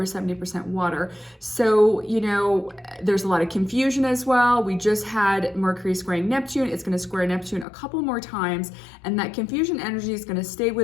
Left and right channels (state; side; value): drops out; right; at 7.7 s